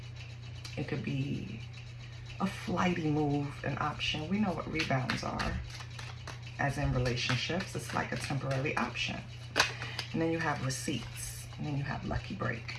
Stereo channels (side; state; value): both; identical; correlation 1.00